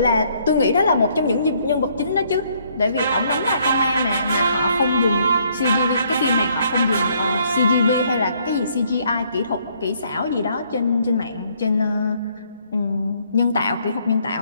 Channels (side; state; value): both; inverted; correlation -0.67